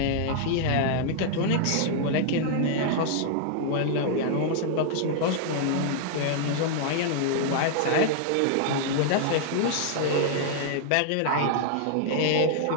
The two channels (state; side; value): different; both; correlation -0.01